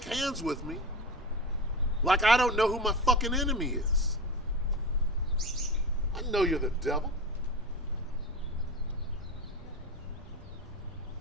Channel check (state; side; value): normal; both; correlation 0.26